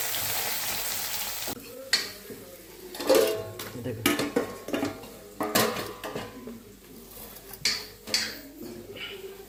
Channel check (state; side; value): identical; both; correlation 1.00